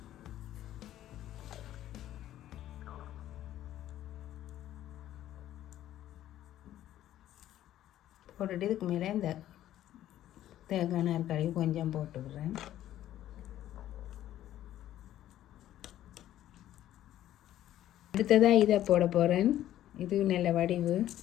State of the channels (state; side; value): quieter; right; 12.7 dB